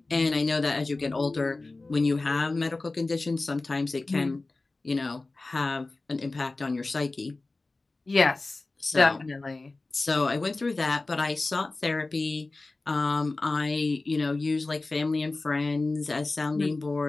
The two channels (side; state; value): right; quieter; 3.3 dB